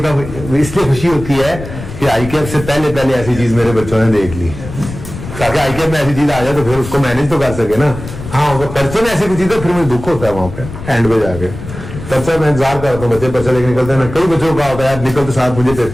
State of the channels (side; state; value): left; noise; rumble, 11 dB below the sound